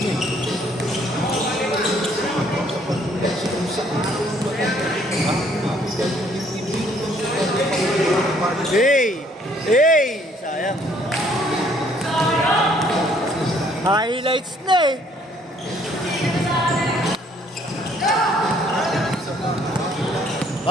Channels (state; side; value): normal; both; correlation 0.63